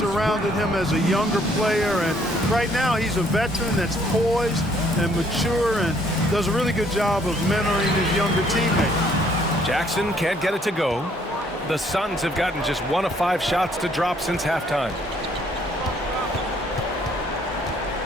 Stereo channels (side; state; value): both; normal; correlation 0.64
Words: him as a younger player, and right now he's a veteran that's poised and mature and does a really good job of mentoring his younger teammates. Jackson can't get it to go. The Suns have gotten just 1 of 5 shots to drop since halftime.